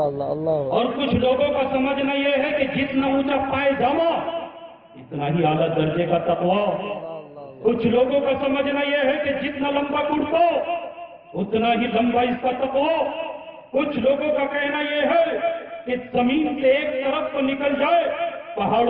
اللہ اللہ۔ اور کچھ لوگوں کا سمجھنا یہ ہے کہ جتنا اونچا پائجامہ اتنا ہی اعلیٰ درجے کا تقوی۔ کچھ لوگوں کا سمجھنا یہ ہے کہ جتنا لمبا کرتا اتنا ہی لمبا اس کا تقوی۔ کچھ لوگوں کا کہنا یہ ہے کہ زمین سے ایک طرف کو نکل جائے،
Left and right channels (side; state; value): both; identical; correlation 1.00